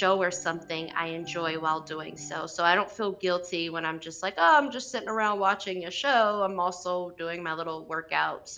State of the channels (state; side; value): identical; both; correlation 1.00